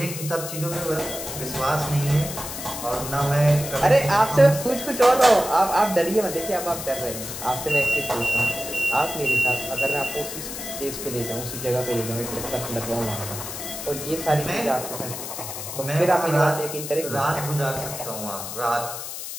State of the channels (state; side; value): noise; left; hiss, 8 dB below the sound